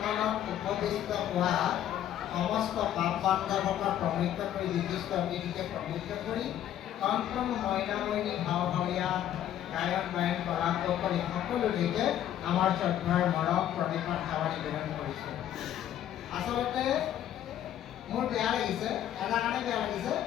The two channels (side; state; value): right; quieter; 11.2 dB